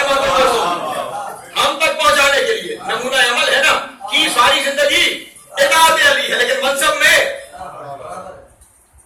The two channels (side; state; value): both; identical; correlation 1.00